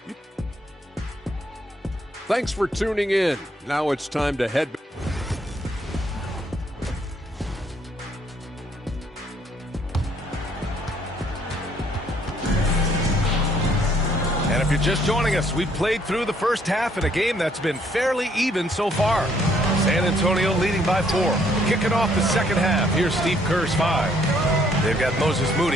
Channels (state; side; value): normal; both; correlation 0.66